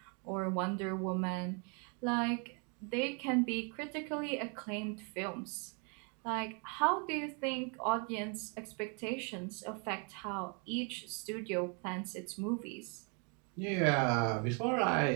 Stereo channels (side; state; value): left; quieter; 36.5 dB